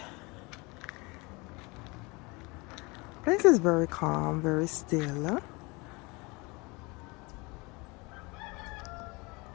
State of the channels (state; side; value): quieter; right; 26.4 dB